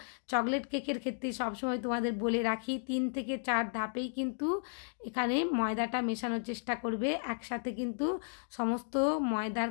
চকলেট কেকের ক্ষেত্রে সবসময় তোমাদের বলে রাখি 3 থেকে 4 ধাপেই কিন্তু এখানে ময়দাটা মেশানোর চেষ্টা করবে। একসাথে কিন্তু সমস্ত ময়দার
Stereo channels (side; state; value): right; silent; digital silence